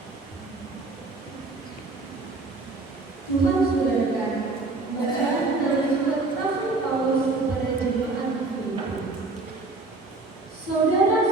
Tuhan sudah dekat. Bacaan dari surat Rasul Paulus kepada jemaat Filipi.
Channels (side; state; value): left; quieter; 3.4 dB